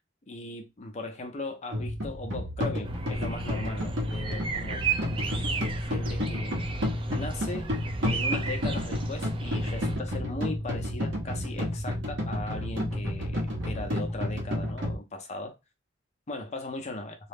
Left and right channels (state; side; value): normal; both; correlation 0.56